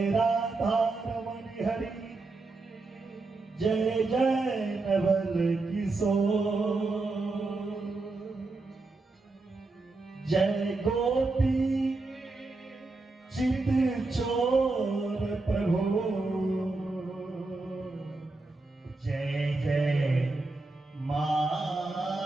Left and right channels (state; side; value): quieter; left; 3.4 dB